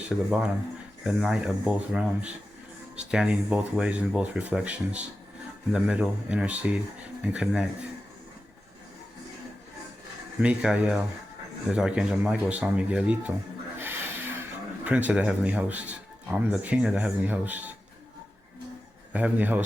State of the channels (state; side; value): normal; both; correlation 0.93